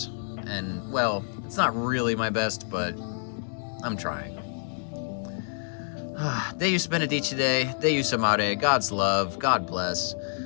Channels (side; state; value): right; silent; 60 dB below the other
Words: And, well, it's not really my best, but I'm trying. Deus benedice day, Deus amare, God's love, God bless.